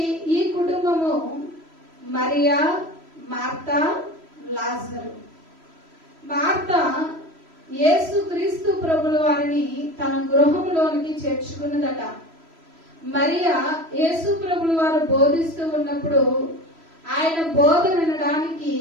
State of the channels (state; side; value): late; left; 3.0 ms